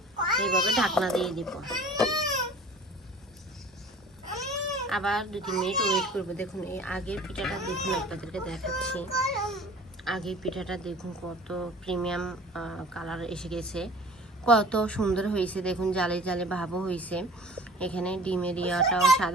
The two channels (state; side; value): normal; both; correlation 0.45